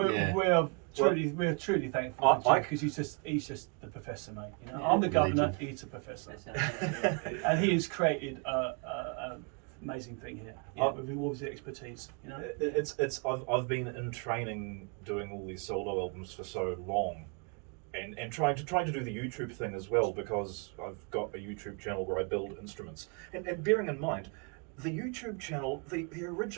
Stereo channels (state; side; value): quieter; left; 35.6 dB